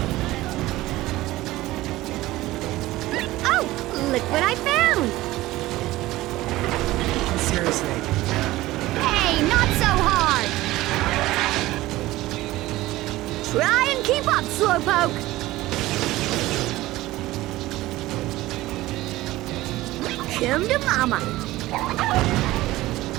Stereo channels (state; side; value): quieter; left; 17.4 dB